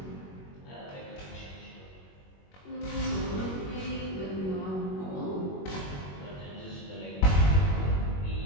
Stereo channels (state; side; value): late; right; 21 ms